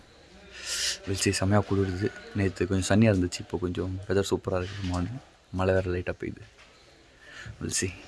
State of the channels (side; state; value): both; identical; correlation 1.00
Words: வெளிச்சி செம்மையாக குளிருது. நேற்று கொஞ்சம் சன்னியாக இருந்துச்சு, இப்போ கொஞ்சம் வெதர் சூப்பராக இருக்குது. மார்னிங் மழை வேறு லைட்டாக பெய்யுது. வெளிச்சி